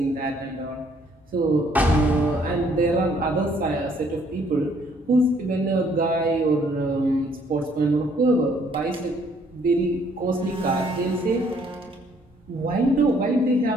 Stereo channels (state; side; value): normal; both; correlation 0.64